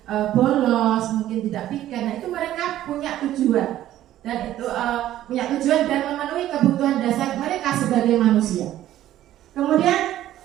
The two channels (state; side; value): quieter; left; 13.1 dB